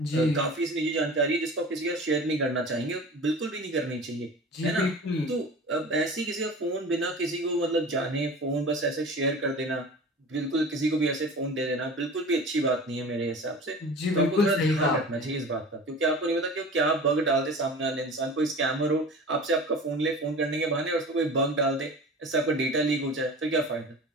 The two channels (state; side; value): normal; both; correlation 0.37